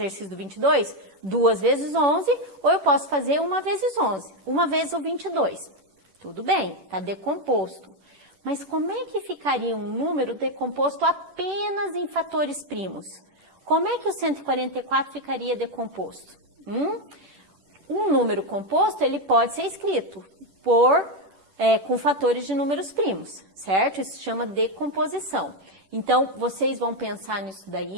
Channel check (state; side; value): late; left; 10 ms